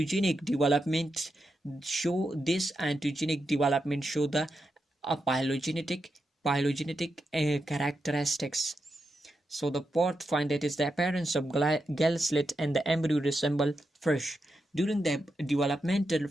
development show this ontogenic development show the phylogenetic characteristics. So the fourth find, that is the appearance of gall slit and the embryo resemble fish. During the developmental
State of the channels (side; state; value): both; normal; correlation 0.86